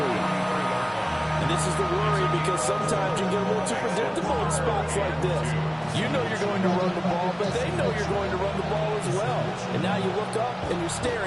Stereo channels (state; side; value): identical; both; correlation 1.00